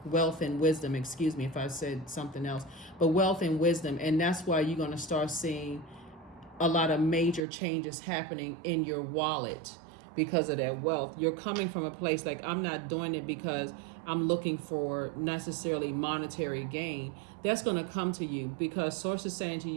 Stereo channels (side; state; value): left; drops out; at 7.5 s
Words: wealth and wisdom, excuse me if I said something else, but wealth and wisdom. And that's why you're going to start seeing a lot of major changes happening in your wallet because of that wealth. You're coming from a place like, I'm not doing it because I'm looking for necessarily monetary gain. That's going to come to you because source is saying to